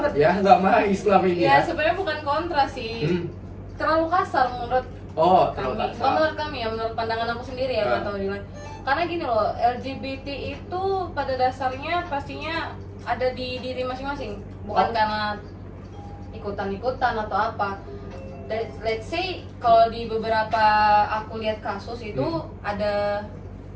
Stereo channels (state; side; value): identical; both; correlation 1.00